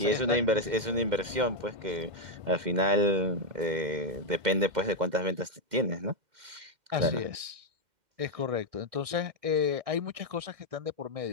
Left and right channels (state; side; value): late; left; 2.1 ms